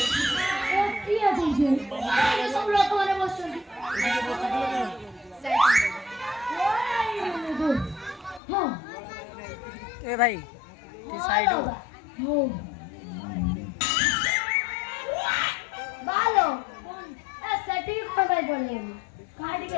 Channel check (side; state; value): right; drops out; at 8.4 s